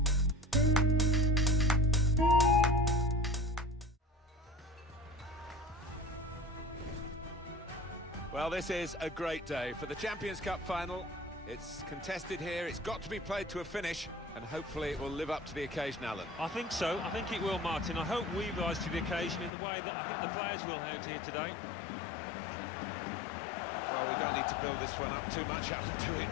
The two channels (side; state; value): right; drops out; at 19.5 s